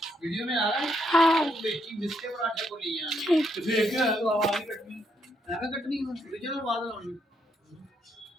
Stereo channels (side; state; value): both; normal; correlation 0.75